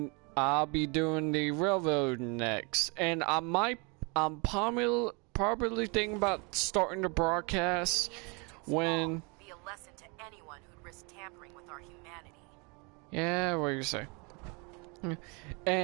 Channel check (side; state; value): left; quieter; 31.1 dB